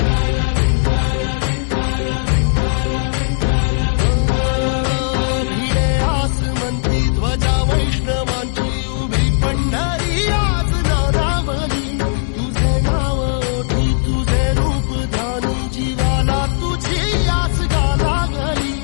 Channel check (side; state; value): right; silent; 61 dB below the other